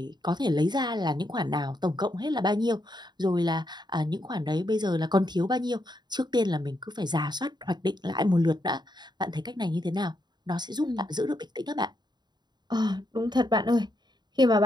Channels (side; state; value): left; late; 0.21 ms